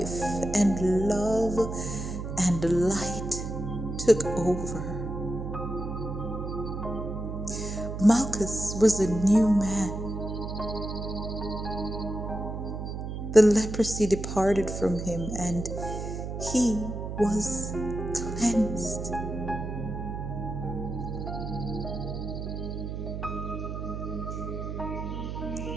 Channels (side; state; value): right; noise; hum, 5 dB below the sound